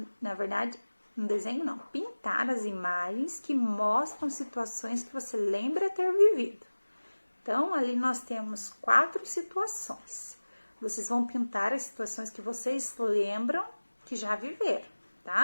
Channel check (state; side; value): inverted; both; correlation -1.00